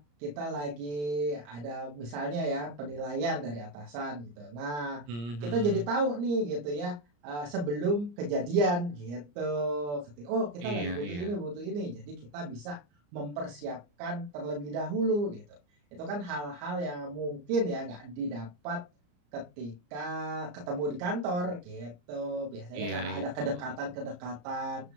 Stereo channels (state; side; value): late; left; 34 ms